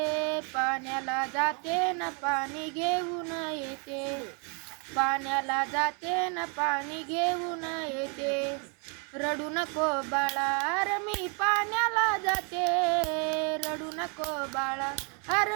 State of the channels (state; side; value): quieter; left; 36.8 dB